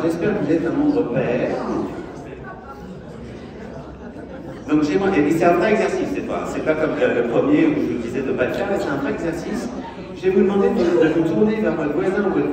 j'espère que vous êtes un nombre pair. Donc et c'est un vrai exercice, c'est pas comme le premier où je vous disais de ne pas le faire, mais c'est un vrai exercice. Je vais vous demander de vous tourner vers votre voisin ou votre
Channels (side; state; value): both; identical; correlation 1.00